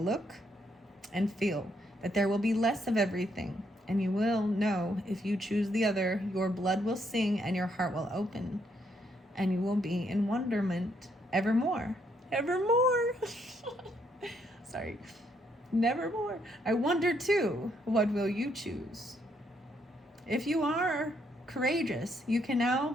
look and feel, that there will be less of everything. And you will know if you choose the other, your blood will sing and your heart will open. And you will be in wonderment evermore. Evermore. Sorry. Nevermore. I wonder too, what will you choose? If you are courageous, you can now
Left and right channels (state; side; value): normal; both; correlation 0.73